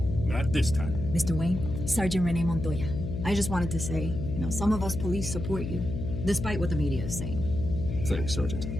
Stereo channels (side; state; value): left; noise; hum, 5 dB below the sound